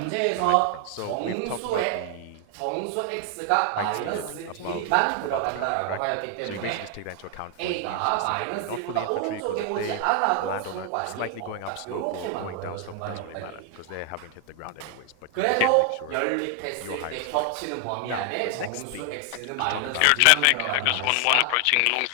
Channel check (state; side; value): different; both; correlation 0.00